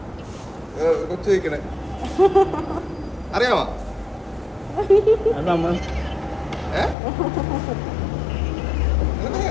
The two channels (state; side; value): drops out; right; at 7.0 s